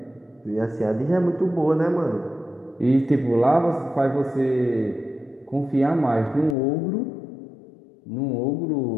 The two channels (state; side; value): drops out; right; at 6.6 s